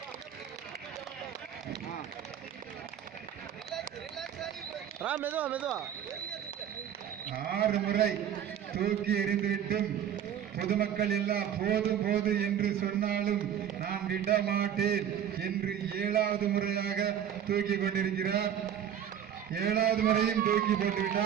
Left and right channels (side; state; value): left; quieter; 9.5 dB